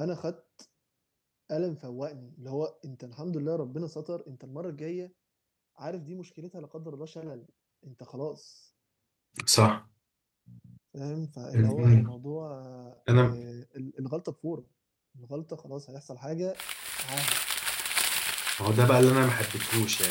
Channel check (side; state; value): both; identical; correlation 1.00